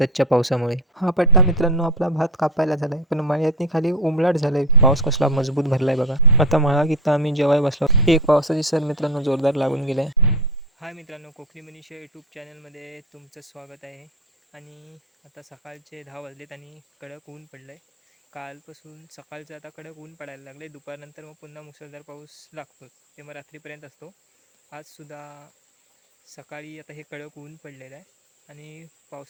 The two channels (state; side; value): normal; both; correlation 0.19